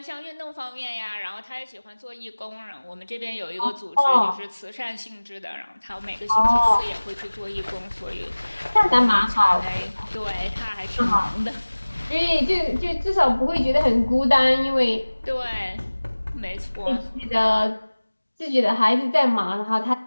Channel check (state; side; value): inverted; both; correlation -1.00